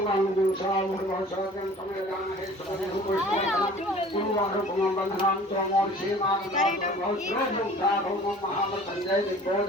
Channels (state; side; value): normal; both; correlation 0.47